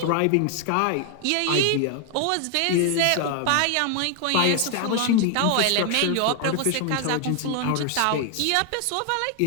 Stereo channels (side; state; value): both; different; correlation 0.00